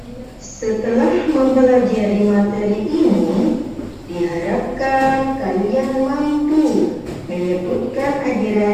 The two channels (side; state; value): both; identical; correlation 1.00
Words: Setelah mempelajari materi ini, diharapkan kalian mampu menyebutkan